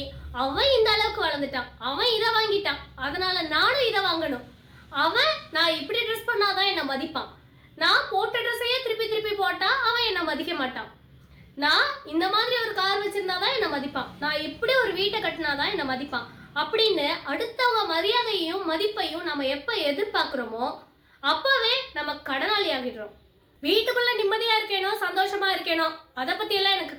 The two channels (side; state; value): both; identical; correlation 1.00